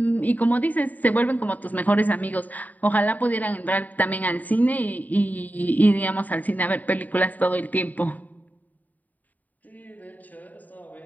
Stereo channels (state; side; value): late; right; 0.079 ms